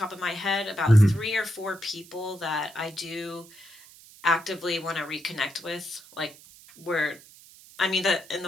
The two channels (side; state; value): right; noise; hiss, 22 dB below the sound